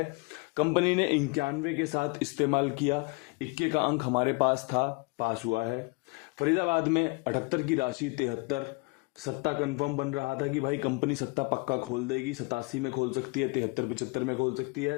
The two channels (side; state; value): right; quieter; 29.1 dB